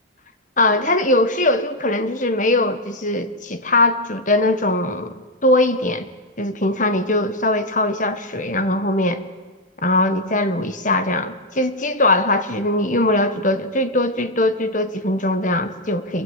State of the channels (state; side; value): normal; both; correlation 0.04